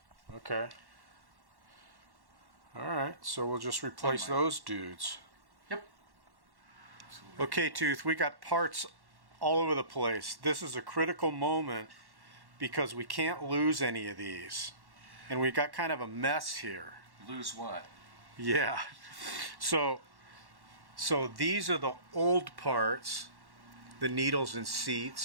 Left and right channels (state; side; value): late; left; 1.1 ms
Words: Okay. All right. So we'll just replace those dudes. Yep. Okay, Tooth, we got parts all over the place. This is a critical moment because we can't lose any of these. And we got kind of a mess here. Lose what? Yeah. So these are the old parts, the needles and